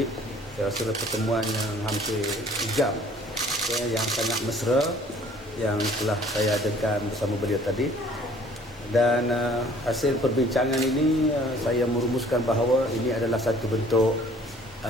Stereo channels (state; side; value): normal; both; correlation 0.55